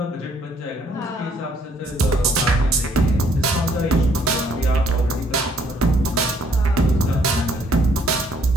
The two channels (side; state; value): both; normal; correlation 0.65